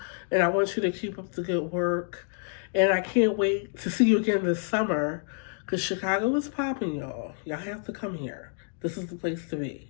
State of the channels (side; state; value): right; silent; 59 dB below the other